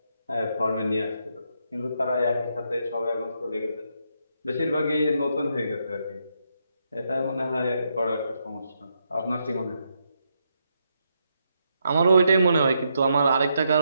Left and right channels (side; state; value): both; inverted; correlation -0.79